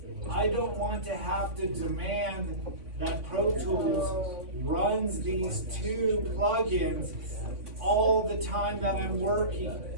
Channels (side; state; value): left; late; 3.5 ms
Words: I don't want to have to demand that Pro Tools runs these two plugins all the time that I'm working.